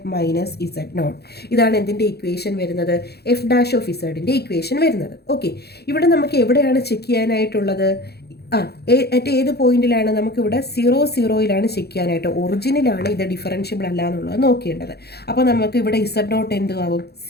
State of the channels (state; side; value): late; right; 0.47 ms